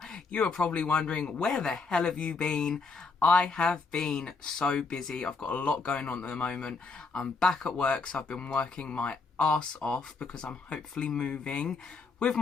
You are probably wondering, where the hell have you been? I have been so busy. I've got a lot going on at the moment. I'm back at work, so I've been working my ass off because I'm hopefully moving with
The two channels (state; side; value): quieter; right; 4.4 dB